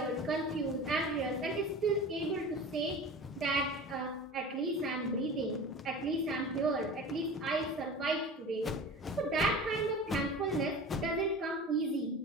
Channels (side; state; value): both; normal; correlation 0.35